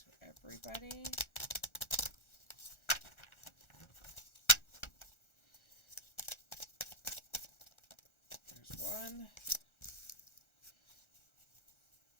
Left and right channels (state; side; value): late; right; 1.4 ms